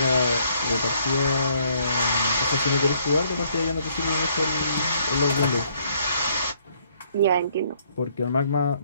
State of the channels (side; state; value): both; inverted; correlation -0.66